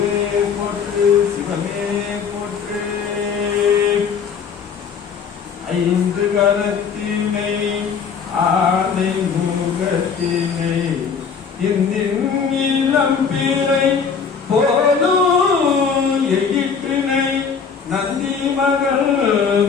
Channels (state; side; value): quieter; right; 6.2 dB